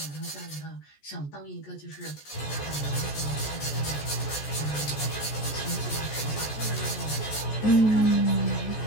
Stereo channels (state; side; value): late; right; 14 ms